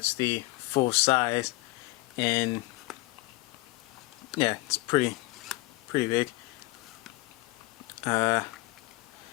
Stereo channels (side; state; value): right; quieter; 21.2 dB